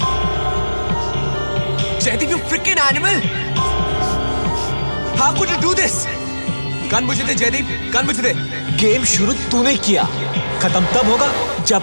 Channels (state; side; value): inverted; both; correlation -1.00